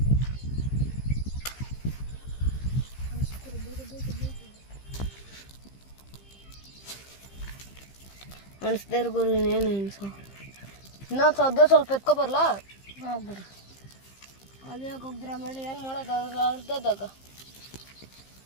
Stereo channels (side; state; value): right; late; 15 ms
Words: ಅನಿಸ್ದೇ ಇರು ಗುರು. ಇನ್ನೇನು ಅನ್ಸೋ ಇನ್ನೊಂದು ಸದ್ಯ ಸ್ವಲ್ಪ ಎತ್ಕೊಬರ್ಲಾ ಹೋಗ್ಬಿಡ್ರಿ. ಅದೇ ಹೋಗಿದ್ರೆ ಆಮೇಲೆ ಏನು ಮಾಡೋದು ಅರ್ಧದಾಗ